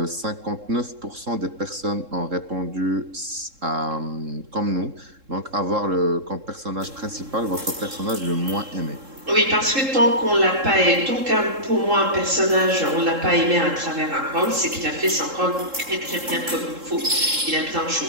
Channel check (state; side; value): late; left; 3.7 ms